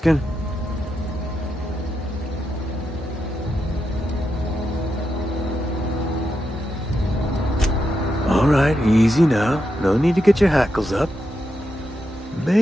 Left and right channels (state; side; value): normal; both; correlation 0.85